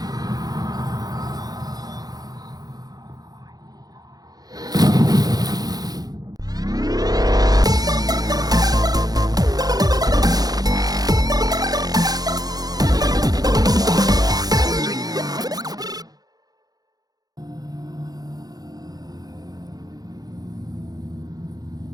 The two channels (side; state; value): left; late; 0.19 ms